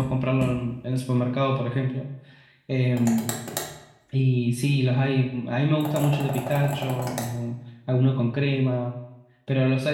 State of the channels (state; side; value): identical; both; correlation 1.00